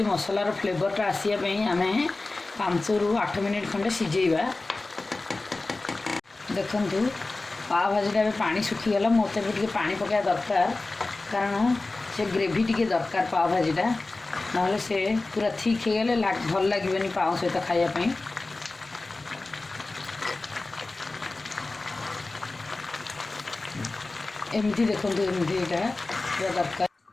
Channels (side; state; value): right; quieter; 3.3 dB